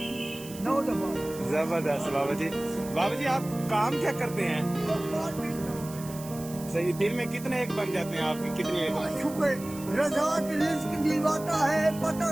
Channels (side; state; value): right; noise; hiss, 15 dB below the sound